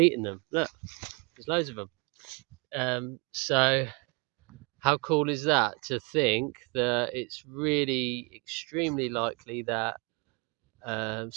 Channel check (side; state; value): left; quieter; 31.6 dB